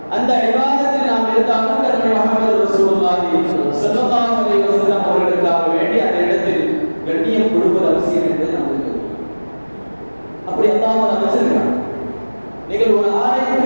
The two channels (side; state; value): both; inverted; correlation -1.00